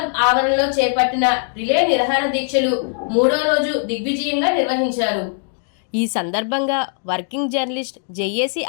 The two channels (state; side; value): silent; right; 61 dB below the other